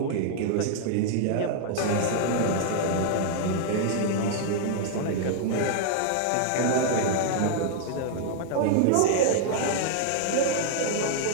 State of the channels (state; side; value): different; both; correlation -0.01